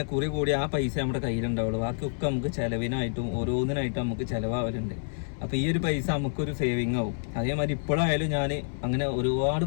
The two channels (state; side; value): silent; right; 59 dB below the other